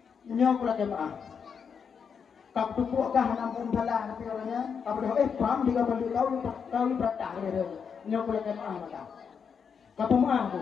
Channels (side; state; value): right; quieter; 6.6 dB